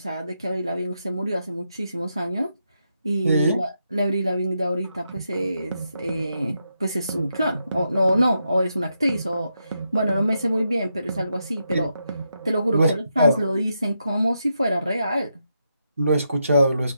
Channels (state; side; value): inverted; both; correlation -0.83